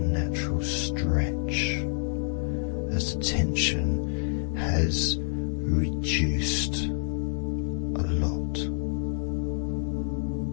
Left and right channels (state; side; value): silent; right; 56 dB below the other